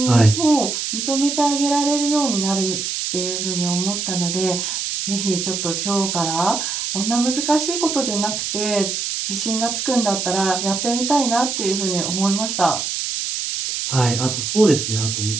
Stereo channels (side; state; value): right; noise; hiss, 2 dB below the sound